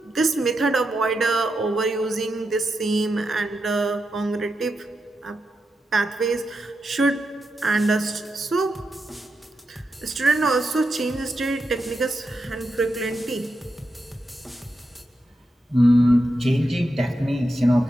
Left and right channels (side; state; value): both; normal; correlation 0.87